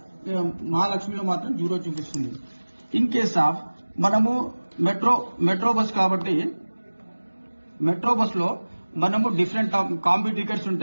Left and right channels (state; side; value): inverted; both; correlation -1.00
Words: మహాలక్ష్మిలో మాత్రం 0 చూపిస్తుంది. ఇన్ కేస్ ఆఫ్ మనము మెట్రో బస్ కాబట్టి మెట్రో బస్ లో మనము డిఫరెంట్ కాంబీ టికెట్స్